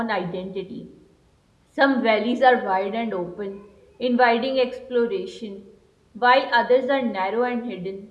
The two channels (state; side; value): identical; both; correlation 1.00